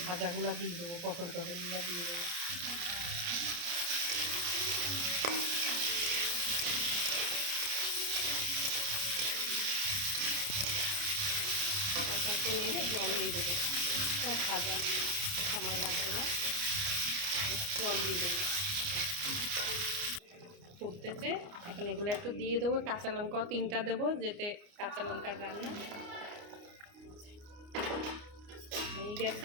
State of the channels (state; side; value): late; left; 29 ms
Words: ভাজাগুলো দিয়ে দেবো, পটল টটলগুলো দিয়ে দেবো। নিয়ে জল দিয়ে দেবো, সব ভাজা সময় লাগবে না, জল দিয়ে দেবো। ফুটতেছে, এখন এগুলো একটু দিয়ে দেবো। কাঁচা লঙ্কাও 3টা দেবো, যেতে কাঁচা লঙ্কার রান্না হয়ে